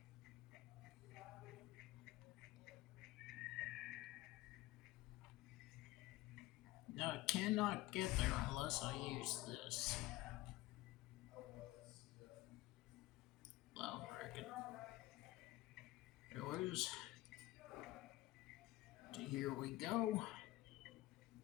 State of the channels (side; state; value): right; quieter; 18.1 dB